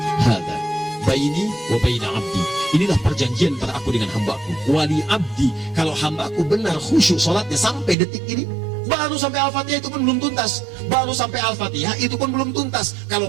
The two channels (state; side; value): drops out; left; at 8.0 s